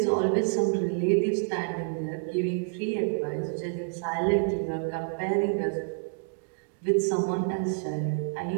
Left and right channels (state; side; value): silent; left; digital silence